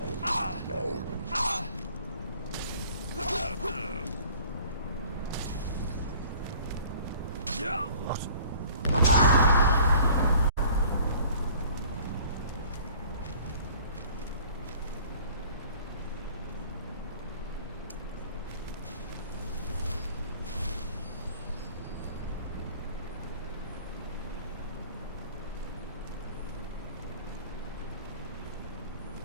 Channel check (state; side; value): inverted; both; correlation -0.50